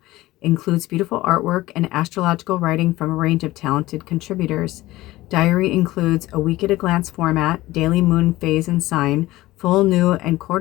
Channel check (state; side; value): quieter; right; 17.7 dB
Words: Includes beautiful artwork and astrological writing from a range of talented contributors. Diary includes a week-at-a-glance format, daily moon phase and sign, full, new, and